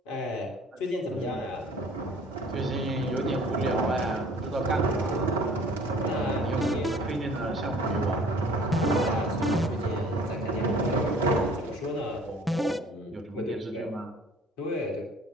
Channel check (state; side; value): normal; both; correlation 0.50